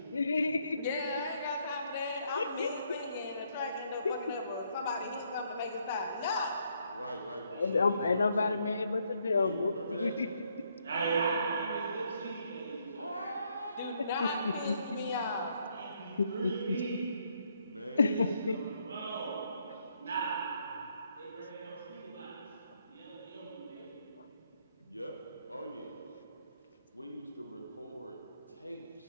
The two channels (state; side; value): inverted; both; correlation -0.73